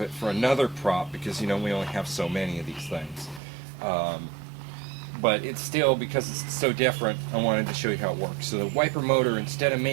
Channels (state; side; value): drops out; left; at 3.4 s